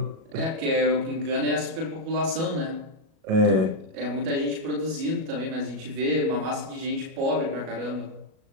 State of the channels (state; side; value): late; left; 37 ms